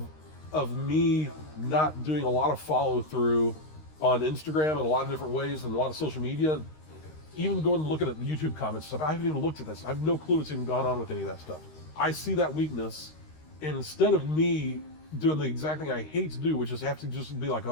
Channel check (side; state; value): right; late; 13 ms